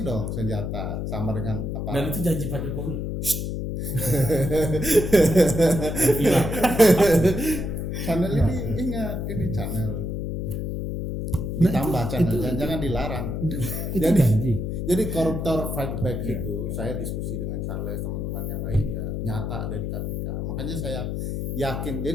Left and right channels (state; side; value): noise; left; hum, 3 dB below the sound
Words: dong senjata sama dengan apa? Dan itu janji Pak Jokowi. Channel ini ingat, ini channel ditambah channel, jangan dilarang. Jadi koruptor fight back itu, saya diskusi dengan Charles, teman-teman yang lain ya nyata ada di KPK. Makanya saya yakin.